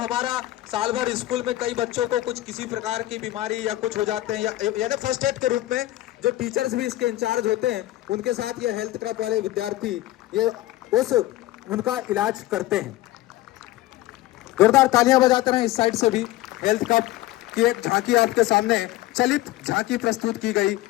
साल भर स्कूल में कई बच्चों को कुछ किसी प्रकार की बीमारी या कुछ हो जाते हैं, यानी फर्स्ट एड के रूप में जो टीचर्स भी इसके इंचार्ज होते हैं उनके साथ ये हेल्थ क्लब वाले विद्यार्थी ये उनका इलाज करते हैं। जोरदार तालियां बजाते रहे। इस साइड से भी हेल्थ क्लब की एक झांकी आपके सामने चलित झांकी प्रस्तुत की गई।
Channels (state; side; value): quieter; right; 16.2 dB